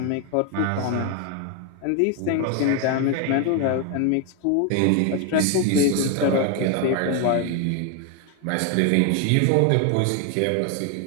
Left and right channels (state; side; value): different; both; correlation 0.01